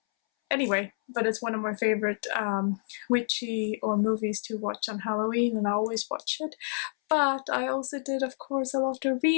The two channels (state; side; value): silent; right; 59 dB below the other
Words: anyway, but it's one of my favorite witchy or movies to watch on Halloween, and I always watch it. But I also did, of course, a lot of